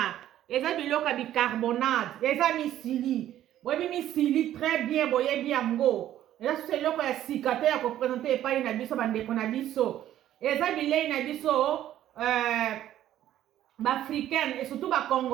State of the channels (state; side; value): quieter; left; 12.3 dB